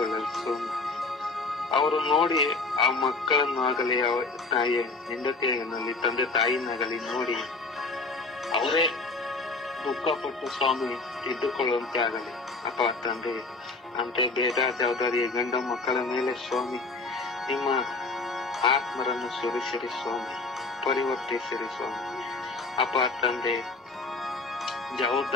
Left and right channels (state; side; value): quieter; right; 3.6 dB